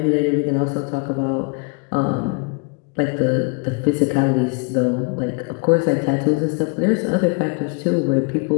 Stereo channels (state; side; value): quieter; right; 33.1 dB